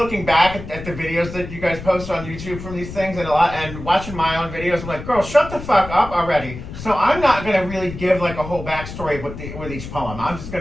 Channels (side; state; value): left; noise; rumble, 11 dB below the sound